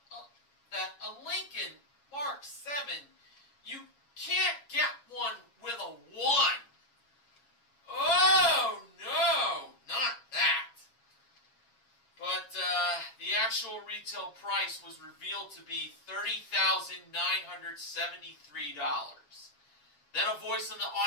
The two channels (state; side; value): late; right; 7.2 ms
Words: that a Lincoln Mark 7, you can't get one with a 1. Oh, no, not that. But the actual retail price was revealed to be $30,973. Then a voice in the